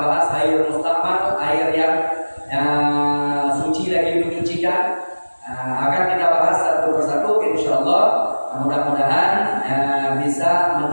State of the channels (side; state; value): both; inverted; correlation -1.00